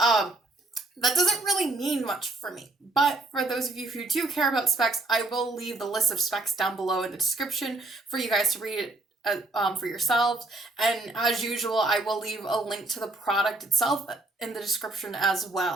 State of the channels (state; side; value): quieter; left; 3.0 dB